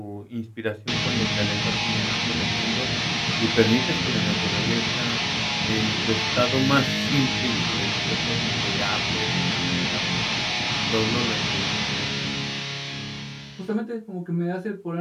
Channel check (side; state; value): both; identical; correlation 1.00